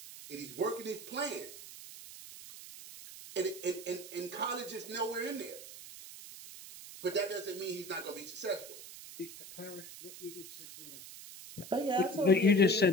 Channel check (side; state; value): right; noise; hiss, 14 dB below the sound